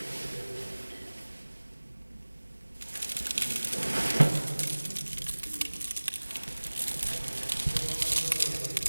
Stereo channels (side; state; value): both; inverted; correlation -1.00